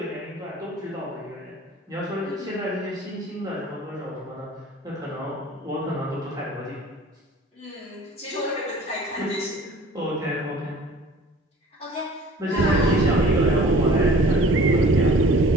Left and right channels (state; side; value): normal; both; correlation 0.47